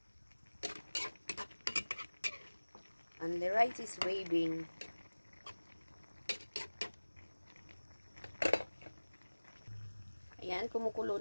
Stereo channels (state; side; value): inverted; both; correlation -1.00